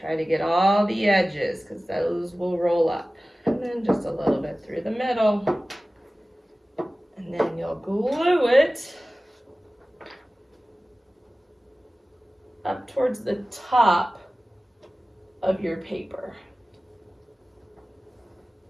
to get all the edges, because those will roll up. And then just a little bit through the middle. And then you'll glue it up towards the top of your paper.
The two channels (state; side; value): normal; both; correlation 0.97